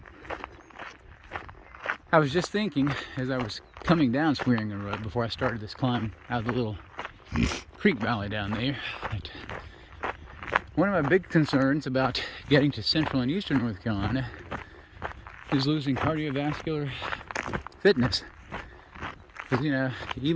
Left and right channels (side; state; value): both; identical; correlation 1.00